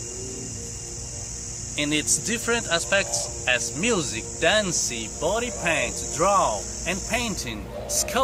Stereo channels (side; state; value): both; identical; correlation 1.00